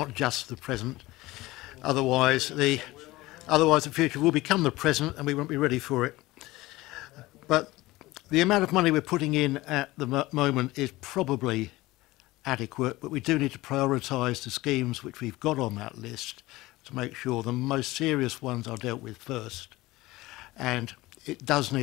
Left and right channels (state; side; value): quieter; right; 19.1 dB